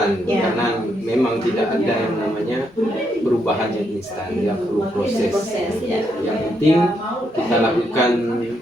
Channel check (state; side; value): normal; both; correlation 0.77